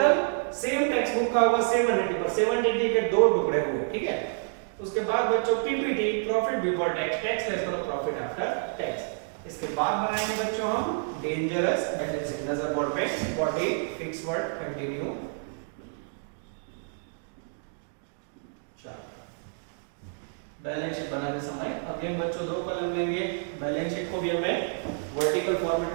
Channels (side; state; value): left; silent; digital silence